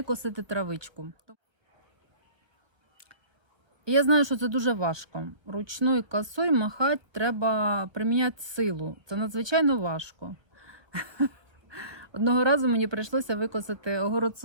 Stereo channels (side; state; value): left; late; 1.3 ms